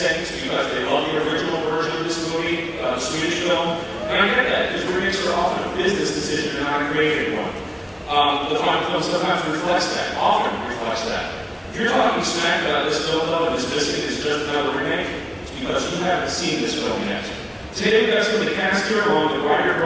things because they love the original version of this movie, the Swedish film, and I get that, because remakes are often a business decision and not a creative one. The final film sometimes reflects that, often reflects that. If you're talking smack about this film, though, and this missing is just another remake, it's because you haven't seen this film yet. Today, we've got some of the cast here, along with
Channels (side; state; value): both; identical; correlation 1.00